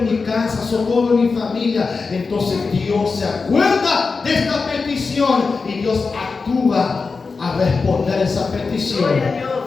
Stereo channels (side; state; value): right; quieter; 4.5 dB